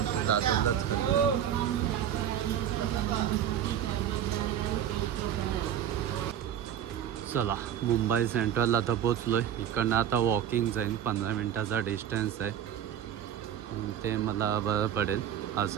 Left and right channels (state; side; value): quieter; left; 9.9 dB